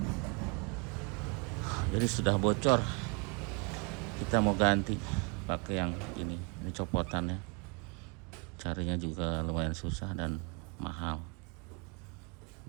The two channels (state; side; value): quieter; left; 32.6 dB